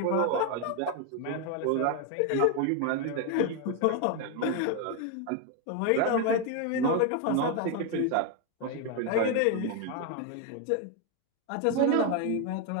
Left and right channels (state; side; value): different; both; correlation 0.01